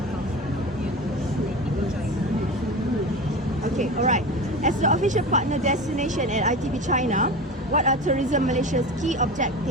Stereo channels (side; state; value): both; normal; correlation 0.29